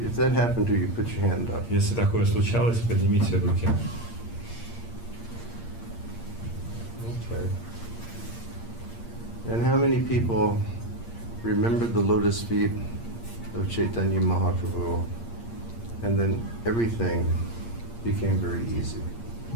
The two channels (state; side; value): late; right; 8.6 ms